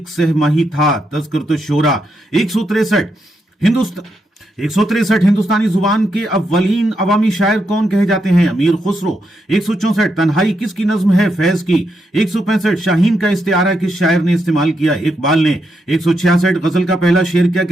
सहमाही था? तज़किरतुल शोरा। 163 हिंदुस्तानी जुबान के अव्वलीन अवामी शायर कौन कहे जाते हैं? अमीर खुसरो। 164 तन्हाई किसकी नज्म है? फैज की। 165 शाहीन का इस्तिआरा किस शायर ने इस्तेमाल किया? इकबाल ने। 166 गजल का पहला शेर क्या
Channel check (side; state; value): both; normal; correlation 0.81